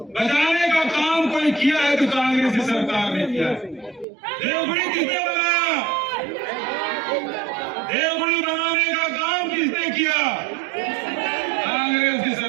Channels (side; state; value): left; drops out; at 4.0 s